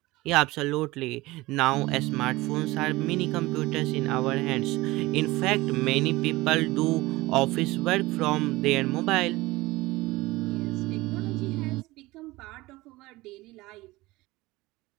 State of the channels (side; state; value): left; quieter; 20.0 dB